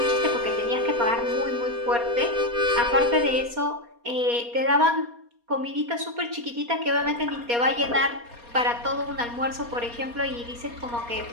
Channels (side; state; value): left; late; 4.2 ms